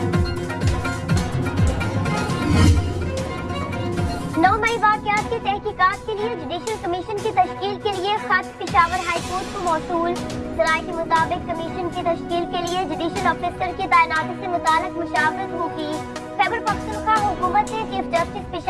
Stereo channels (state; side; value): identical; both; correlation 1.00